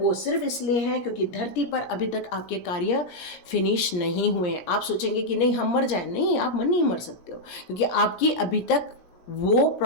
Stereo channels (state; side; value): late; right; 17 ms